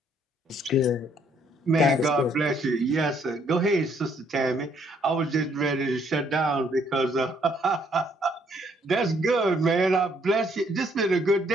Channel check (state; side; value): normal; both; correlation 0.67